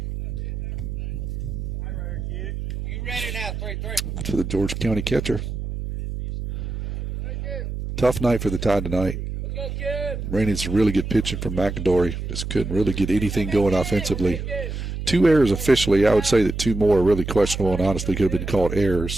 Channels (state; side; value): noise; right; hum, 5 dB below the sound